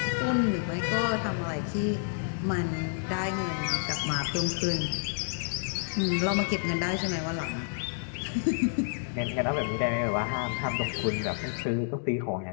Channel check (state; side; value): silent; right; digital silence